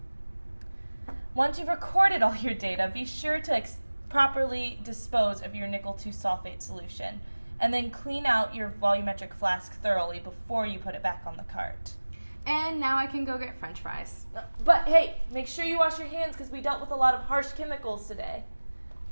Once you've recorded all your data, be sure to properly dispose of your nickel 2 sulfate solution, and then clean out your volumetric flask thoroughly before you put it back on the cart. And now I can go get French fries. But hey, make sure you wash your hands because we dealt with a lot of harsh chemicals today.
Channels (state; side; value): inverted; both; correlation -1.00